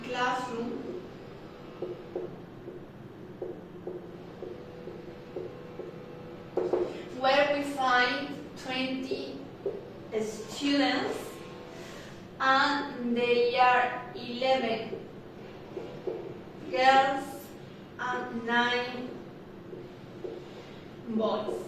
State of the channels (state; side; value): identical; both; correlation 1.00